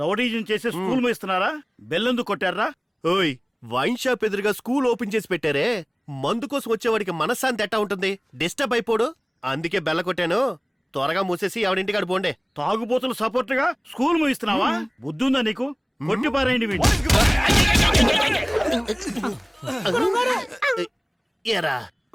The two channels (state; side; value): identical; both; correlation 1.00